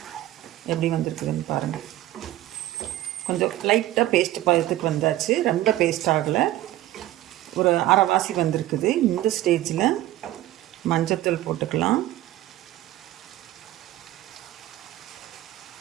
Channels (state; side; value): quieter; left; 15.0 dB